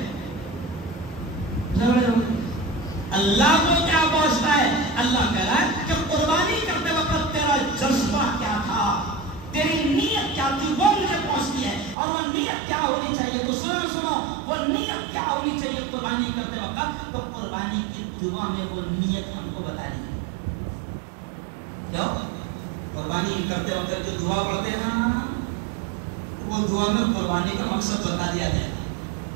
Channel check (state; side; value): drops out; left; at 12.0 s